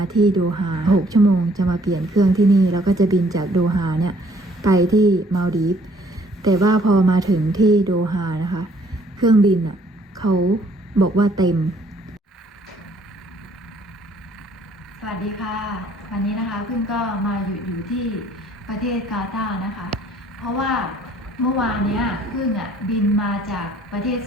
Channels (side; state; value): both; normal; correlation 0.61